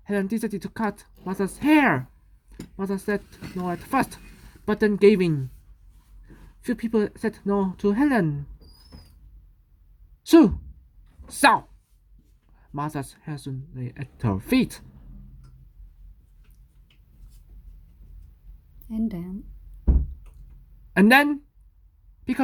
Helen decided to cut Martha's hair. Martha said no at first, but then gave in. Few people said no to Helen. So, Martha's hair soon lay at her feet. And then,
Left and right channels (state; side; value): identical; both; correlation 1.00